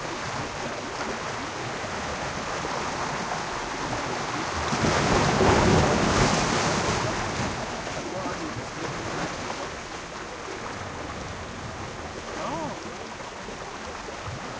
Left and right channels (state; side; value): identical; both; correlation 1.00